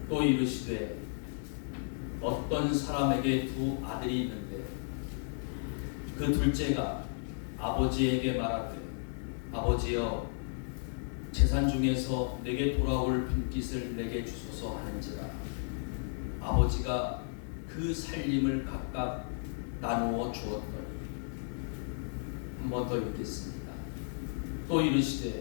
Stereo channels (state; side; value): silent; right; digital silence